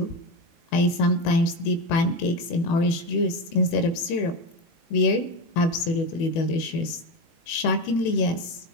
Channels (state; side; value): late; right; 18 ms